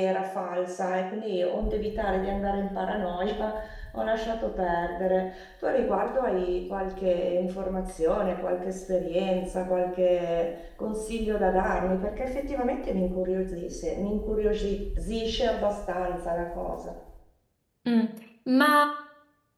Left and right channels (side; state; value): both; identical; correlation 1.00